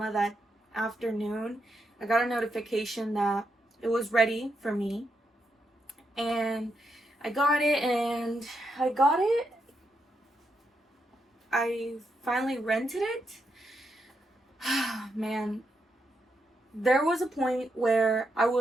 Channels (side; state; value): both; normal; correlation 0.82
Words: that afternoon, I got a notification that it was ready for me. And I got it, I finally rented it. Man, there was a point where I